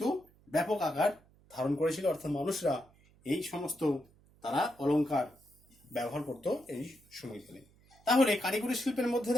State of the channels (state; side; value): noise; right; hum, 29 dB below the sound